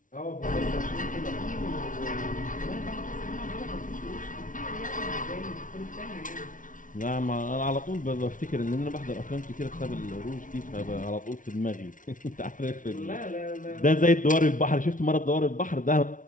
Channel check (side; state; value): right; late; 0.38 ms